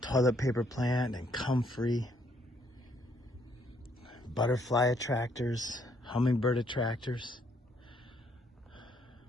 Toilet paper plant and comfrey, butterfly attractors, hummingbird attractors.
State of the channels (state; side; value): normal; both; correlation 0.69